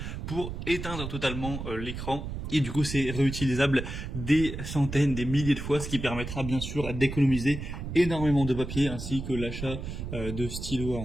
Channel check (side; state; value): right; noise; rumble, 7 dB below the sound